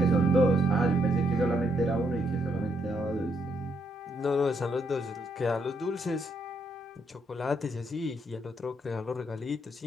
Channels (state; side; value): normal; both; correlation 0.75